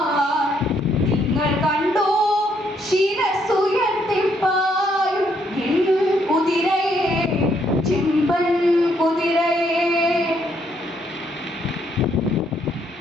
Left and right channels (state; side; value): normal; both; correlation 0.71